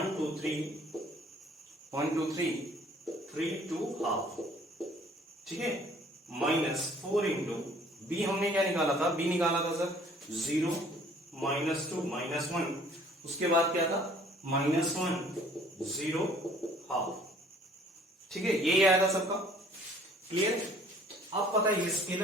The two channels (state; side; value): normal; both; correlation 0.55